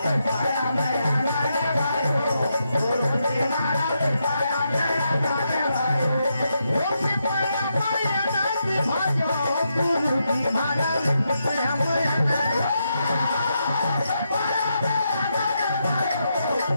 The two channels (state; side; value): inverted; both; correlation -0.83